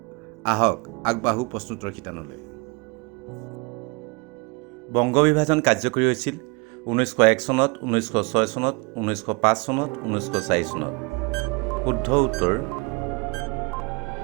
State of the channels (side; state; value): left; quieter; 28.9 dB